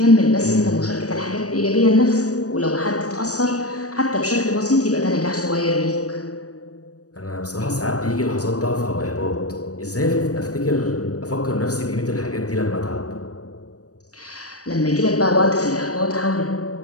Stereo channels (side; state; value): right; late; 0.66 ms